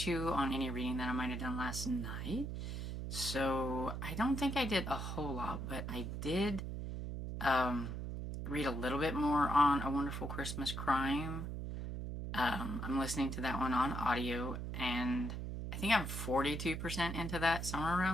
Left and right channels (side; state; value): right; noise; hum, 5 dB below the sound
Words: you on any reading that I might have done last night. So I don't think I did a whole lot, but I did read a little bit more on A Wonderful Christmas Crime. I'm listening to that one on audio, and I think I'm 42% into that, somewhere